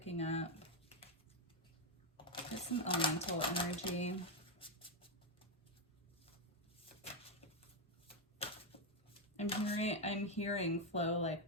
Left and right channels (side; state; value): both; normal; correlation 0.03